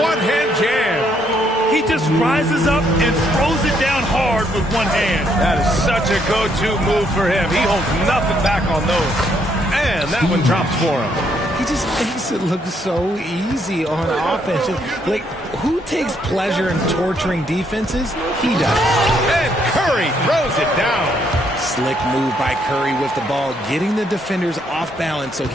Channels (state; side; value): normal; both; correlation 0.72